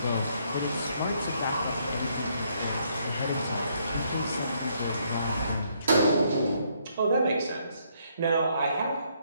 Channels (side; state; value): both; inverted; correlation -0.71